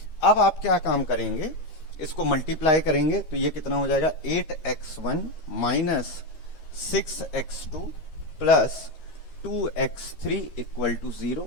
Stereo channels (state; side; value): late; right; 13 ms